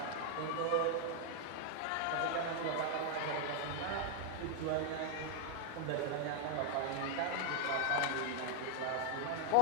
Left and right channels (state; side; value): different; both; correlation 0.00